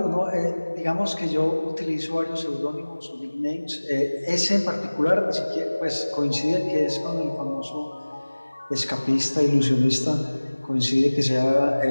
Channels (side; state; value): both; inverted; correlation -1.00